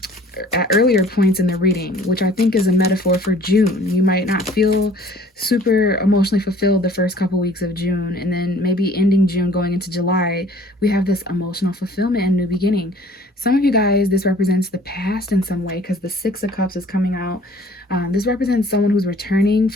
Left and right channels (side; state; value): both; normal; correlation 0.52